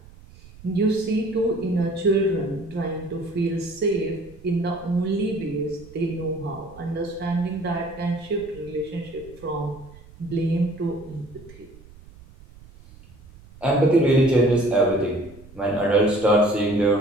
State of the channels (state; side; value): noise; right; rumble, 22 dB below the sound